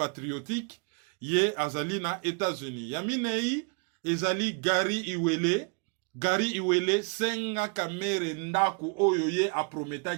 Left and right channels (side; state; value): left; quieter; 35.9 dB